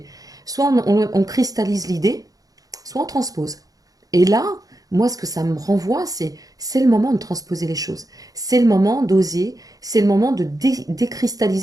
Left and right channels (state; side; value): late; left; 0.17 ms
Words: Soit on cristallise l'idée, soit on transpose. Et là, moi, ce que ça me renvoie, c'est le moment de transposer les choses. C'est le moment d'oser, c'est le moment de